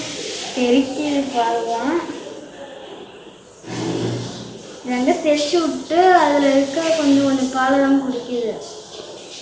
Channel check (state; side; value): identical; both; correlation 1.00